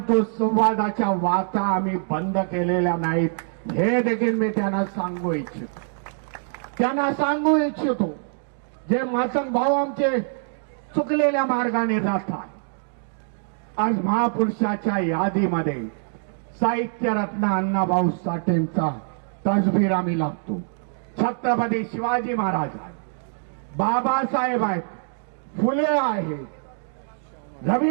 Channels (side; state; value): left; silent; digital silence